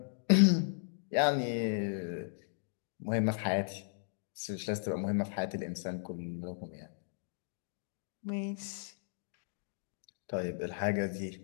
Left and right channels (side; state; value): right; silent; digital silence